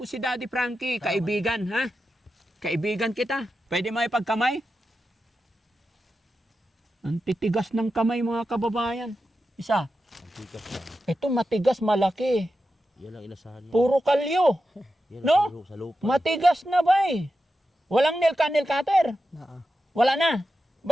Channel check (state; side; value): normal; both; correlation 0.90